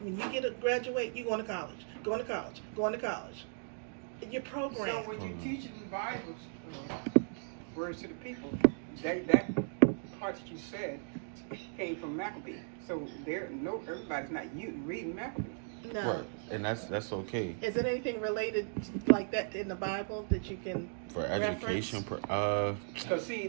when you graduate, you're going to college, going to college, going to college. You're programmed. So when you teaching the Bible words to the people, that part that you said came from Maccabees. So everybody's not reading Maccabees. No. Right. And that's okay. Is it anything related like that in the Bible that you can For education, Because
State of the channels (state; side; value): silent; left; digital silence